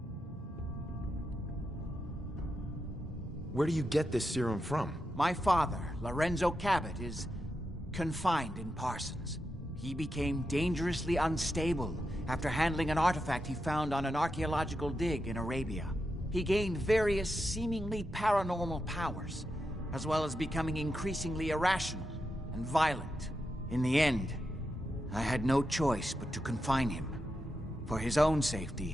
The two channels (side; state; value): both; normal; correlation 0.87